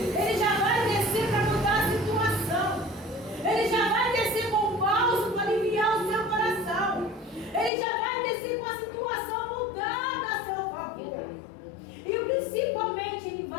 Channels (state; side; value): drops out; right; at 7.7 s